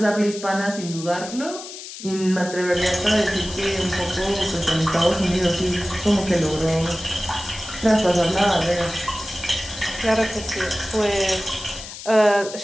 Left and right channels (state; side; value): noise; left; hiss, 12 dB below the sound